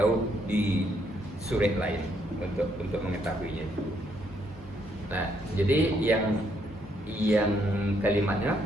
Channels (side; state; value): both; normal; correlation 0.72